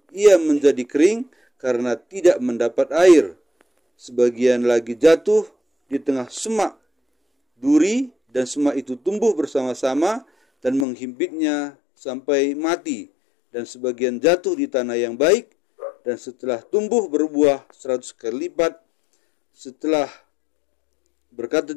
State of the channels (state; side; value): drops out; right; at 10.9 s